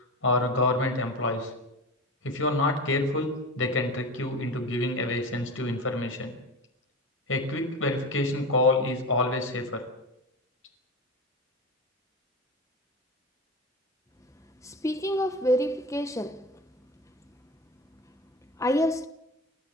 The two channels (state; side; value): normal; both; correlation 0.26